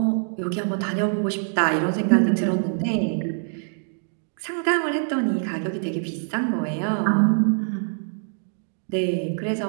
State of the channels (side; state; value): left; silent; digital silence